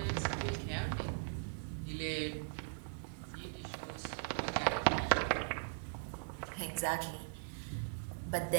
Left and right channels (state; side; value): silent; left; digital silence